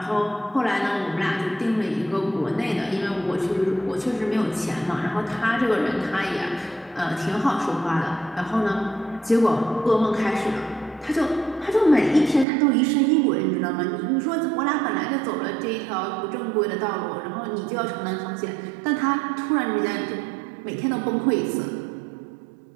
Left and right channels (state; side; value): drops out; left; at 12.5 s